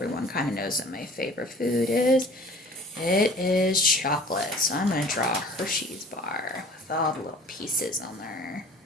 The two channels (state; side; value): normal; both; correlation 0.47